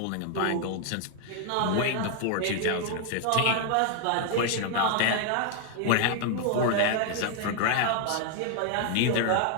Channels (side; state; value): both; different; correlation 0.00